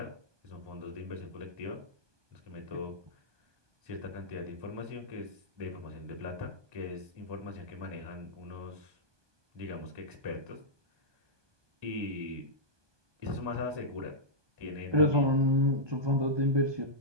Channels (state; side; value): late; left; 1.2 ms